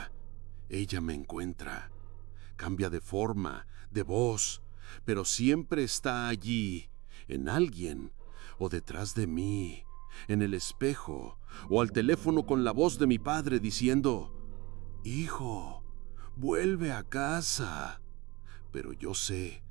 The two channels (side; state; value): left; quieter; 23.2 dB